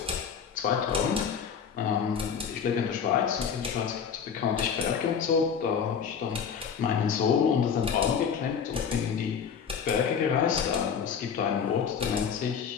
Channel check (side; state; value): right; quieter; 7.0 dB